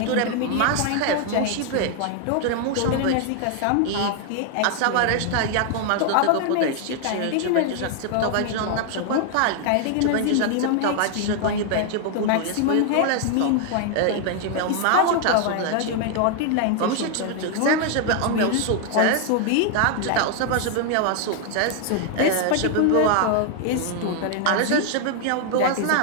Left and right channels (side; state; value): both; different; correlation 0.00